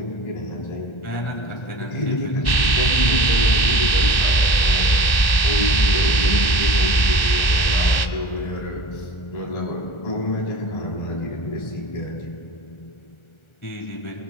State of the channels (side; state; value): right; late; 1.4 ms